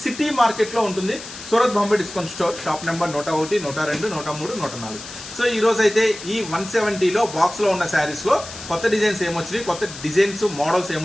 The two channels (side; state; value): left; noise; hiss, 13 dB below the sound